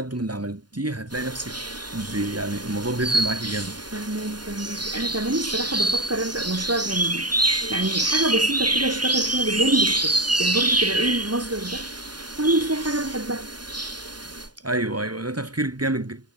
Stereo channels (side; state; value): left; late; 0.70 ms